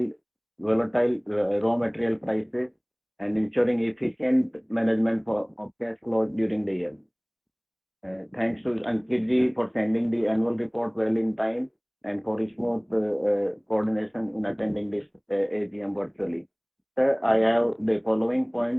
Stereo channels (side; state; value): both; identical; correlation 1.00